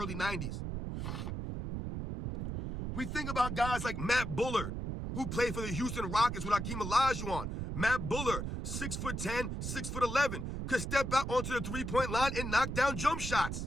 90s. We think about guys like Matt Bullard, who played for the Houston Rockets with Hakeem Olajuwon. Matt Bullard, 6'10", 6'11", could step out onto the three-point line and knock down jump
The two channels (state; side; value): noise; right; rumble, 4 dB below the sound